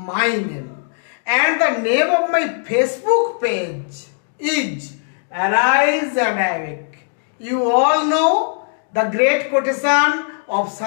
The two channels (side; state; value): right; silent; digital silence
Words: name and the name of my Facebook page is Arise and Awake. You all know the great quotation of